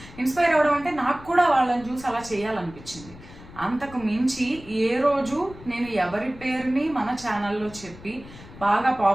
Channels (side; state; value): left; noise; rumble, 18 dB below the sound